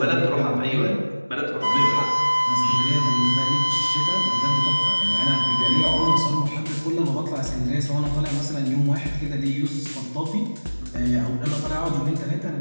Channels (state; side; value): inverted; both; correlation -1.00